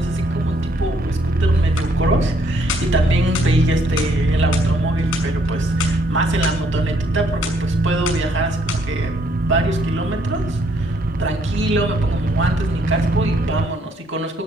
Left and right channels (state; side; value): normal; both; correlation 0.68